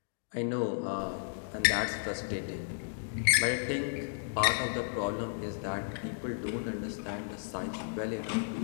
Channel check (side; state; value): right; silent; digital silence